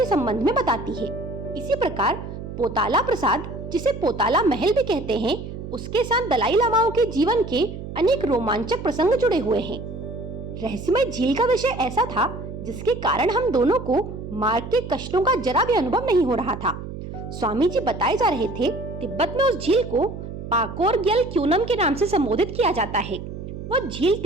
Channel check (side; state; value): right; noise; hum, 9 dB below the sound